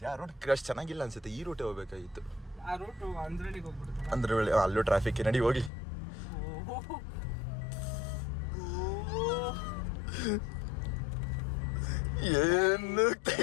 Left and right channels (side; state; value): right; drops out; at 5.7 s